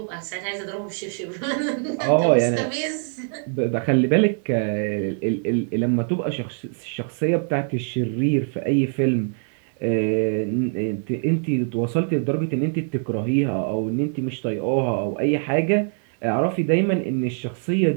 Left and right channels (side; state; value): left; silent; 56 dB below the other